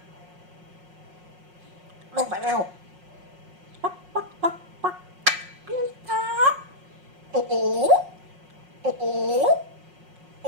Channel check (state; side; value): late; left; 5.5 ms